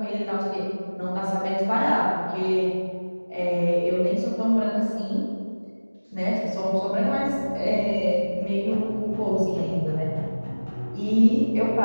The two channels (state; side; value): inverted; both; correlation -1.00